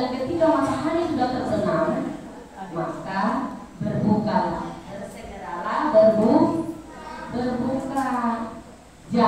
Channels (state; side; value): identical; both; correlation 1.00